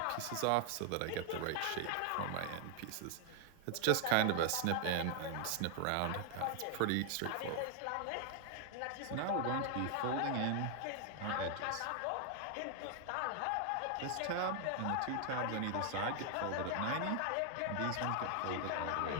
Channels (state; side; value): different; both; correlation 0.00